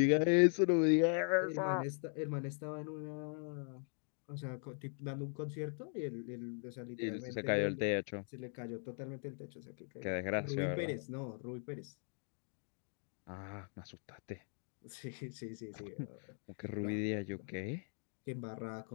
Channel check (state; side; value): silent; right; 51 dB below the other